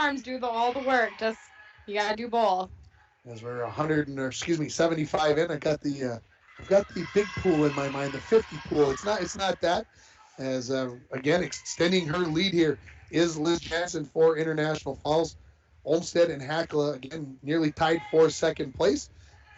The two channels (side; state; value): both; identical; correlation 1.00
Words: do all the work. Just, you got to do both. As we're 75 in, I've got the big pool in my mind, the 50 pool. It's not that. As again, extending her lead here is Liz Jansen for International Falls. Olmsted and Hackala again nearly tied for second place